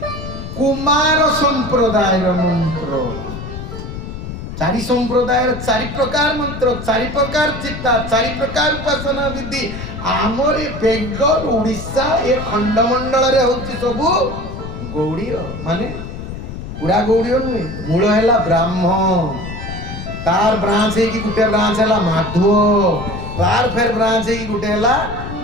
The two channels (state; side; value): noise; left; rumble, 9 dB below the sound